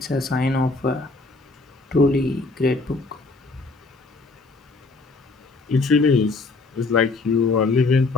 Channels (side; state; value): right; quieter; 3.6 dB